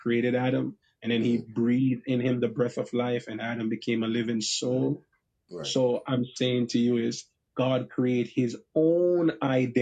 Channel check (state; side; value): identical; both; correlation 1.00